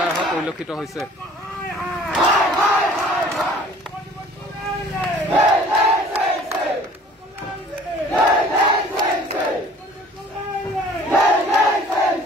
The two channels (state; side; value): normal; both; correlation 0.51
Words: অহা পৰিলক্ষিত হৈছে।